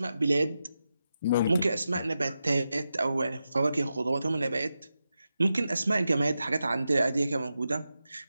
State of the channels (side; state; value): both; inverted; correlation -0.90